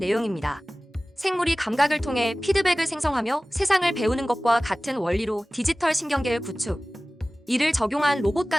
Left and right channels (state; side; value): normal; both; correlation 0.98